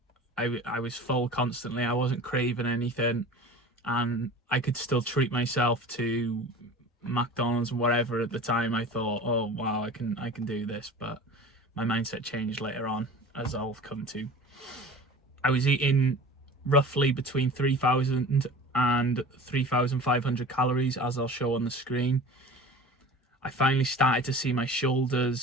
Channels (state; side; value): normal; both; correlation 0.39